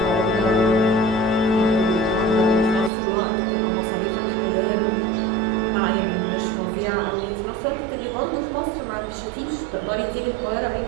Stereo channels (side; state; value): left; drops out; at 2.9 s